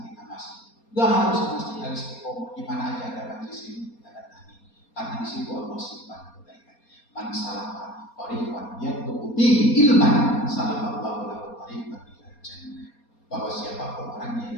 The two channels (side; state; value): right; late; 4.3 ms